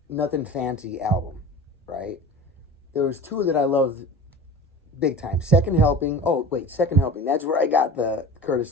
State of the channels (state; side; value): normal; both; correlation 0.35